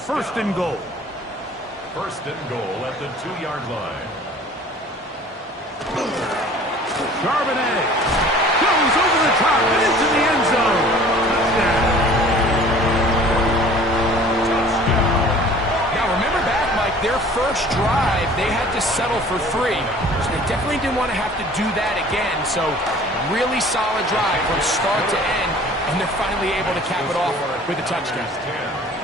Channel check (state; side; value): normal; both; correlation 0.48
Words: and goal. 1st and goal at the 2-yard line. Charbonnet goes over the top and into the end zone. Touchdown. Now remember back, Mike, their first drive, they had to settle for 3. So they definitely didn't want to have to do that again. So really solid drive from start to end, and they're finally able to cap it off with a touchdown.